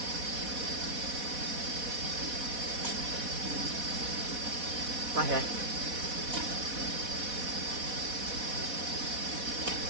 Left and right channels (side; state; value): left; late; 4.1 ms